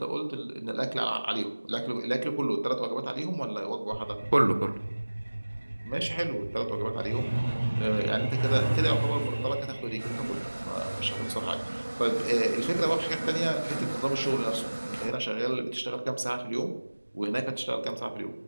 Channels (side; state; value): both; inverted; correlation -1.00